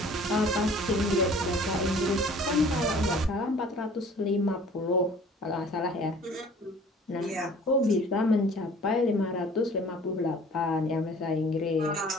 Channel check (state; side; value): normal; both; correlation 0.50